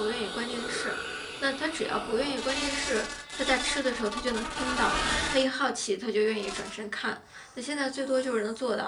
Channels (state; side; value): identical; both; correlation 1.00